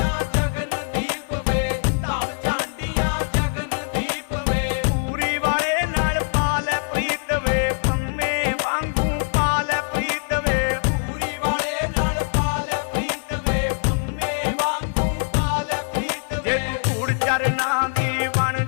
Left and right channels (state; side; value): silent; right; 55 dB below the other